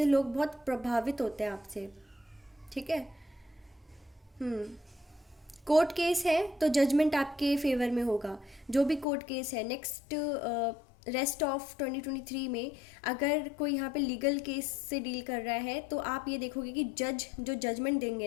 लोग बहुत प्रभावित होते हैं आपसे। ठीक है, कोर्ट केस है तो जजमेंट आपके फेवर में होगा। जो भी कोर्ट केस है नेक्स्ट रेस्ट ऑफ 2023 में, अगर कोई यहाँ पे लीगल केस से डील कर रहा है, तो आप ये देखोगे कि जज जो जजमेंट देंगे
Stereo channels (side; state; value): right; drops out; at 9.1 s